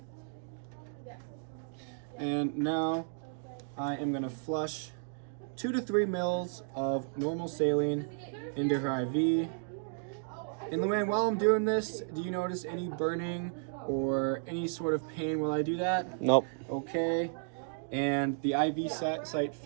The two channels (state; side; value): silent; left; digital silence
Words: And now I am going to flush 2 to 3 mils of normal saline into her IV. And Luann, while I'm doing this, do you notice any burning or any sort of pain while I do that? Nope. Okay. And the IV site